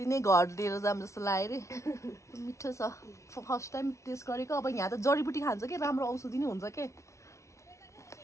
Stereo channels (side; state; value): right; late; 0.14 ms